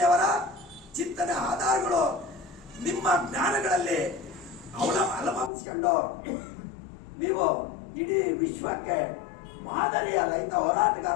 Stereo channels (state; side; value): drops out; right; at 5.5 s